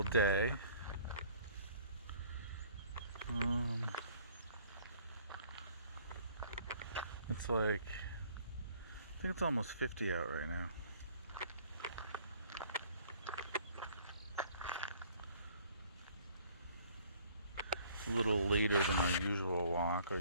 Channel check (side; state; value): both; inverted; correlation -0.56